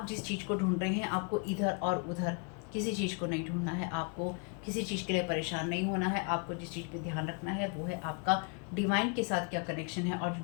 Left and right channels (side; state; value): right; quieter; 35.7 dB